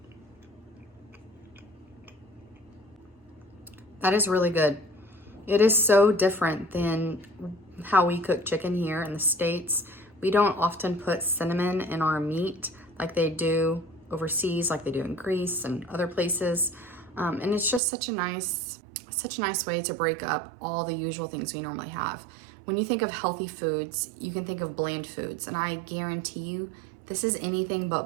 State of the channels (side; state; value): left; drops out; at 17.8 s